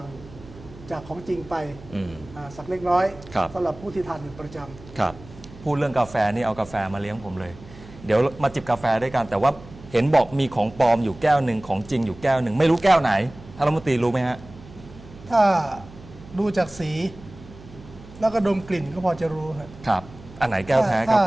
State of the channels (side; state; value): right; noise; hum, 19 dB below the sound